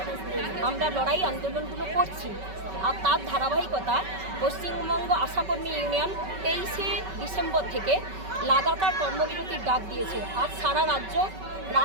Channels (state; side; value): late; left; 5.3 ms